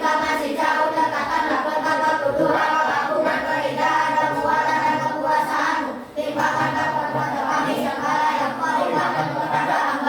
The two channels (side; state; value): both; identical; correlation 1.00